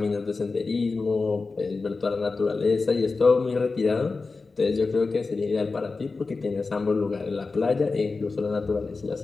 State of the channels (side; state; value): right; quieter; 4.0 dB